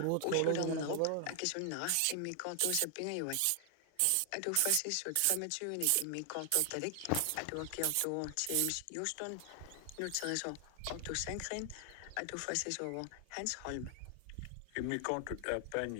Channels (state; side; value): different; both; correlation 0.00